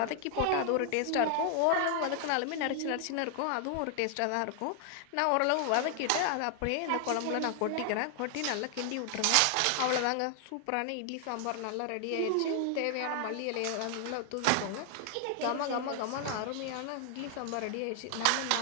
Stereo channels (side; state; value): both; different; correlation 0.00